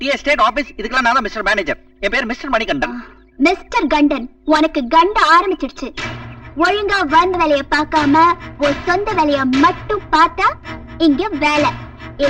எஸ்டேட் ஆபீஸ், இதுக்கெல்லாம் நான் தான் மிஸ்டர் மேனேஜர். என் பேர் மிஸ்டர் மணிகண்டன். மிஸ்டர் கண்டன், உனக்கு கண்ட ஆரம்பிச்சிடுச்சு. ஒழுங்கா வந்த வேலைய பார்க்காம ஒரு சொந்த வேலைய மட்டும் பார்த்தா இங்க வேலை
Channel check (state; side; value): identical; both; correlation 1.00